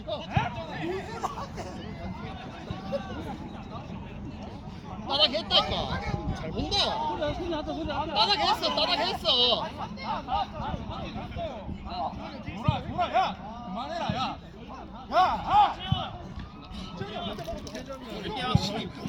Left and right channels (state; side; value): identical; both; correlation 1.00